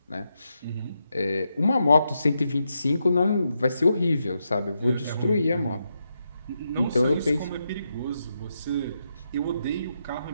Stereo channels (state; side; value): inverted; both; correlation -0.84